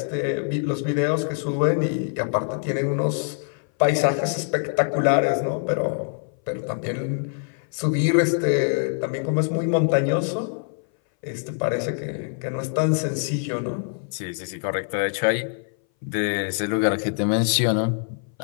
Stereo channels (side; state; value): right; silent; 59 dB below the other